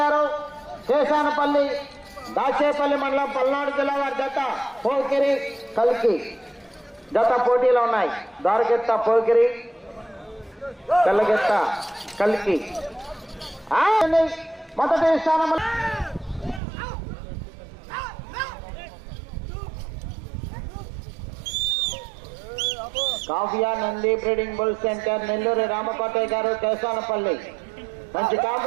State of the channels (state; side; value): drops out; left; at 16.6 s